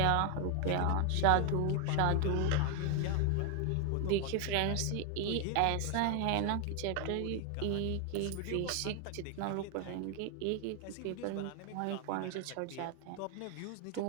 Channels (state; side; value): different; both; correlation 0.00